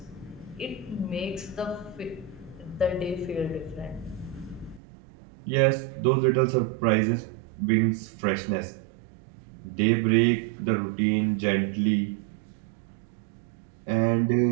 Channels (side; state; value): left; drops out; at 4.8 s